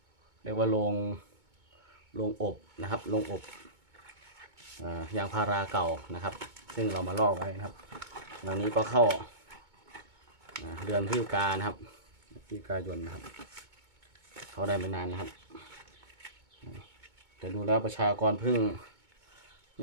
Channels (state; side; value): late; left; 2.2 ms